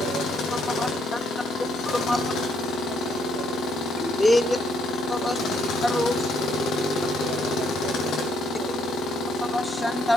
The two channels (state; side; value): normal; both; correlation 0.71